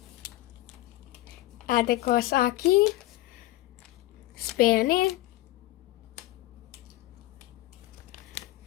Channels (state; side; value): quieter; right; 17.2 dB